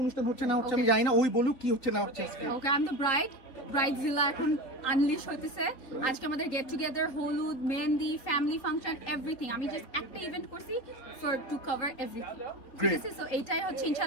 অনুষ্ঠান হচ্ছে না হচ্ছে আমি জানি না, ওই বলুক কি হচ্ছে না হচ্ছে আজকে। Okay, I'm the bride. Bridezilla এখন আনলিশ হইতেছে আজকে আমাদের গেট টুগেদার হলুদ মেহেন্দি ফ্যামিলি ফাংশন এভরিথিং আমি জাস্ট একটা ইভেন্ট করছি ফর টু কভার এভরিথিং ঠিক আছে সো এইটাই হচ্ছে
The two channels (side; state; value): right; late; 4.1 ms